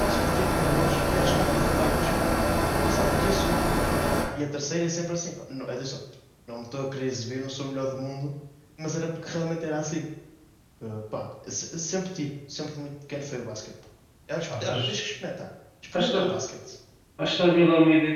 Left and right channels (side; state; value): both; identical; correlation 1.00